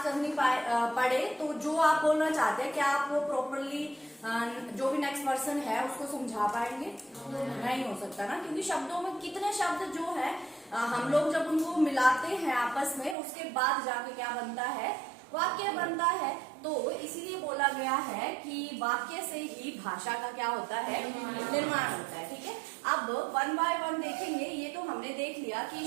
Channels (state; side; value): drops out; left; at 13.2 s